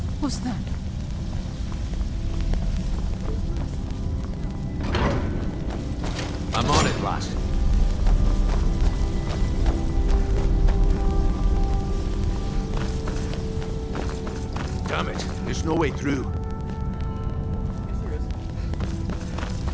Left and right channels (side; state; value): both; identical; correlation 1.00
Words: What's that? I'm on it, lass. Damn it, there's no way through.